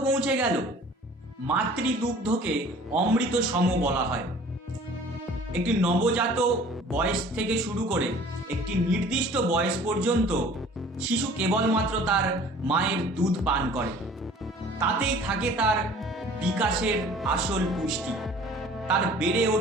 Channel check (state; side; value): normal; both; correlation 0.49